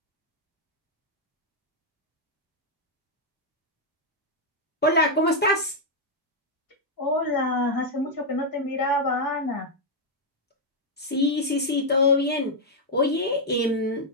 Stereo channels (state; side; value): normal; both; correlation -0.02